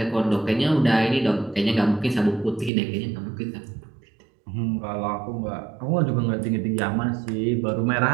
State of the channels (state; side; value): drops out; left; at 2.7 s